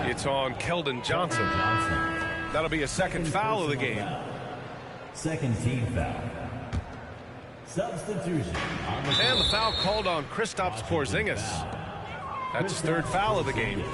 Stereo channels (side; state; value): both; identical; correlation 1.00